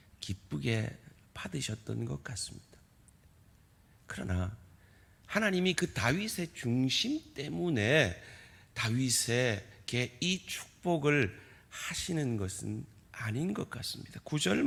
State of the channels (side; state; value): both; identical; correlation 1.00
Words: 기쁘게 받으셨던 것 같습니다. 그러나 하나님이 그 다윗의 중심 때문에 다윗에게 이 축복을 하시는 것은 아닌 것 같습니다. 9절